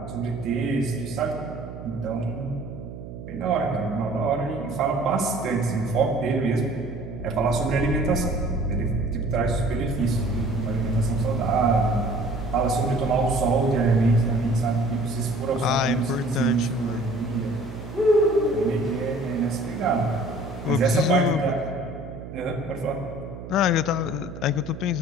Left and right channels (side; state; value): right; noise; hum, 12 dB below the sound